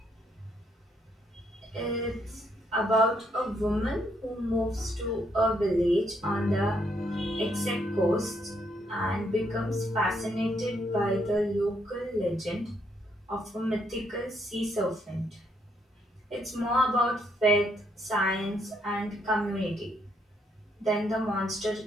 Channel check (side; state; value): both; normal; correlation 0.73